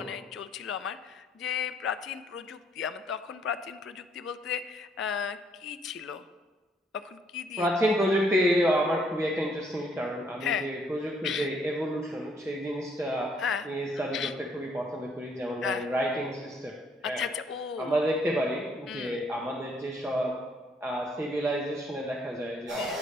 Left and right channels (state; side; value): normal; both; correlation 0.67